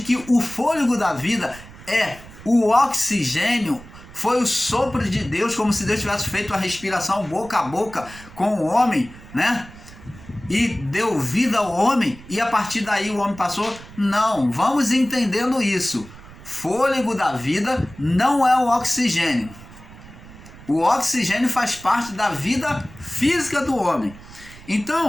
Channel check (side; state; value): right; noise; rumble, 19 dB below the sound